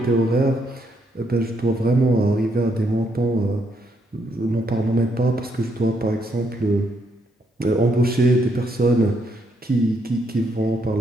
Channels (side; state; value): both; normal; correlation 0.75